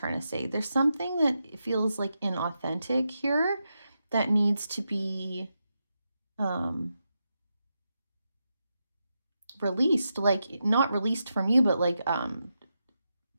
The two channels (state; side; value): inverted; both; correlation -0.87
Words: to say. There's something that feels like inauthentic here that needs to be released, like not released from you, but like